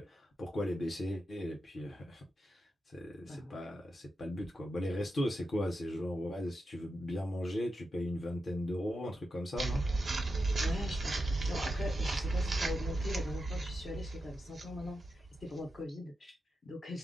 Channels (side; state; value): both; normal; correlation 0.88